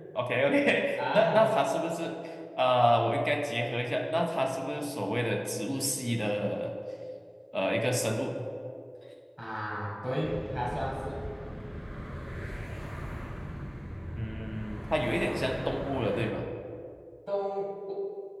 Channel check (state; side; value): identical; both; correlation 1.00